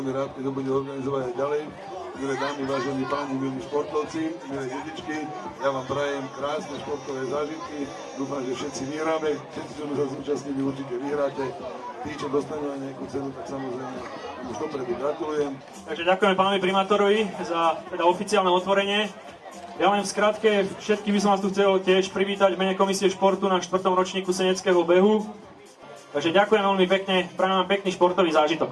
rád, keď ho bude organizovať aj ďalej. Milé dámy, vážení páni, milí športovci, milé detičky, ja vám prajem krásne športové zážitky. Dúfam, že všetci vyhráme, všetci, čo sa zúčastnili, určite vyhráte. Tí, čo dostanú aj nejakú cenu, tak samozrejme už dopredu gratulujem. Takže ďakujeme pánovi primátorovi za teda oficiálne otvorenie. Ja len v skratke, všetkých by som vás tu chcel tiež privítať v mene Komisie športu na 4. ročníku seneckého behu. Takže ďakujem veľmi pekne, prajem vám pekný športový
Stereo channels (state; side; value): identical; both; correlation 1.00